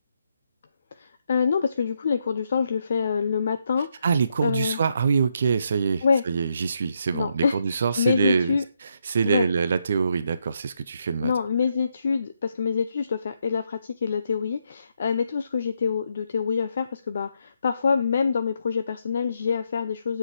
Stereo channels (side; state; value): both; inverted; correlation -0.78